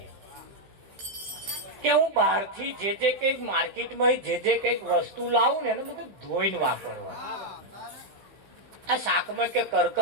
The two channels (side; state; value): left; late; 16 ms